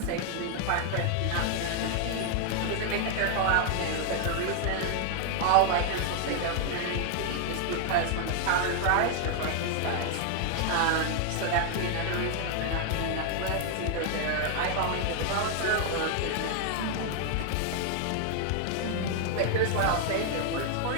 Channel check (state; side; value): different; both; correlation 0.00